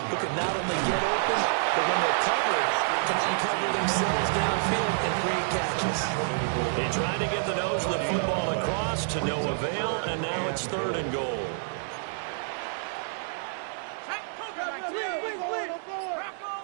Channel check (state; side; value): silent; left; digital silence